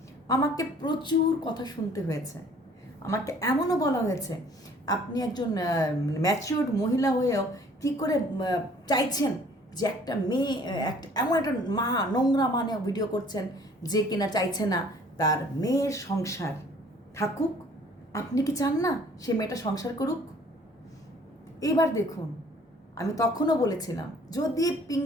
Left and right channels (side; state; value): both; normal; correlation 0.55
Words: আমাকে প্রচুর কথা শুনতে হয়েছে। আমাকে এমনও বলা হয়েছে, আপনি একজন ম্যাচিওর্ড মহিলা হয়েও কী করে চাইছেন যে একটা মেয়ে, একটা এমন একটা মা, নোংরা মানে ভিডিও করছেন যে কিনা চাইছে না তার মেয়ের সংসার থাকুক। আপনি কি চান না সে মেয়েটা সংসার করুক? এবার দেখুন, আমি তখনও বলেছিলাম যদি